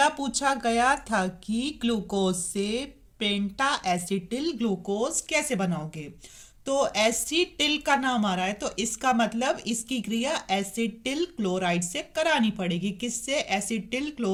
पूछा गया था कि ग्लूकोज से पेंटा एसिटिल ग्लूकोज कैसे बनाओगे? तो एसिटिल का नाम आ रहा है, तो इसका मतलब इसकी क्रिया एसिटिल क्लोराइड से करानी पड़ेगी। किससे? एसिटिल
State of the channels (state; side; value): identical; both; correlation 1.00